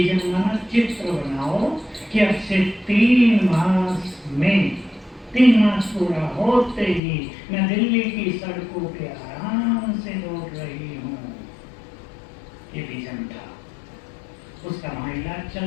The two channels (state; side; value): drops out; right; at 7.0 s